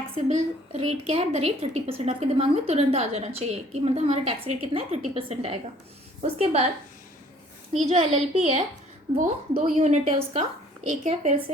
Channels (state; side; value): normal; both; correlation 0.56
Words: रेट क्या है। The rate 30%। आपके दिमाग में तुरंत आ जाना चाहिए कि मतलब हमारा टैक्स रेट कितना है, 30% आएगा। उसके बाद ये जो LLP है वो 2 यूनिट है उसका। एक है फिर